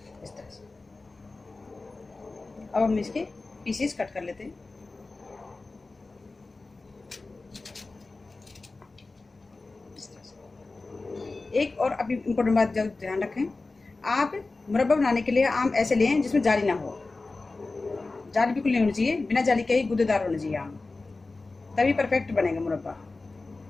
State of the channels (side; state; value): right; quieter; 3.5 dB